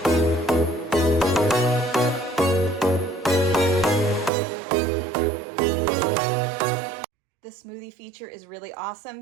The smoothie feature is really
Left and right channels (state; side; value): drops out; left; at 4.3 s